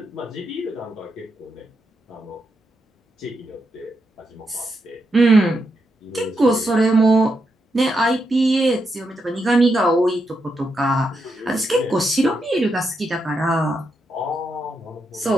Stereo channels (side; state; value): both; normal; correlation 0.83